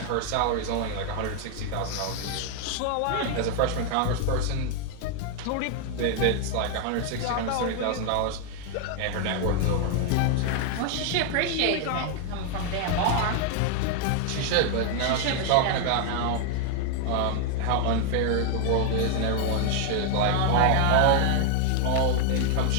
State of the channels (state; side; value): different; both; correlation 0.00